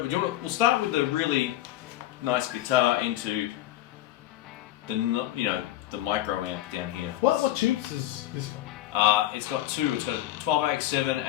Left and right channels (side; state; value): right; quieter; 14.4 dB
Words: we'll start with the really nice guitar into the micro amp down here. What tubes is this one? It's got two. It's got a 12AX7